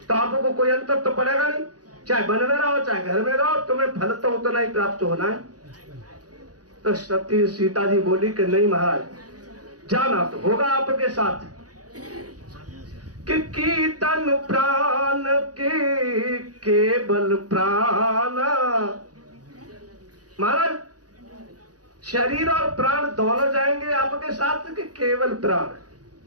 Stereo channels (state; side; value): late; left; 0.68 ms